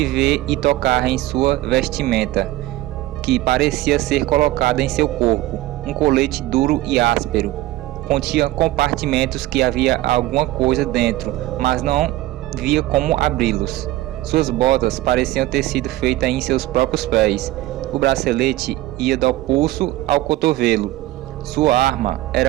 ver e tocar em sua vestimenta, que parecia ser colocada em seu corpo, um colete duro e áspero. Continha compartimentos que havia alguma coisa dentro, mas não via como abri-los. Suas botas pareciam ter sido feitas em seus próprios pés. O bracelete ia do pulso ao cotovelo. Sua arma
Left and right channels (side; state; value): left; quieter; 16.7 dB